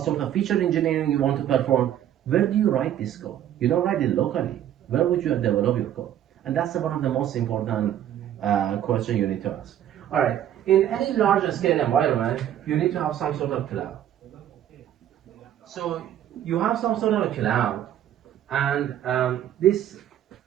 sort of feature engineering you want to perform? Where do you write this code? You don't write it locally. Where would you develop your code? And that's one of the most important questions you need to ask. All right, in any large scale environment, you need to have some sort of cloud. So you have some sort of a cloud, and this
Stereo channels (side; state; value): left; quieter; 11.0 dB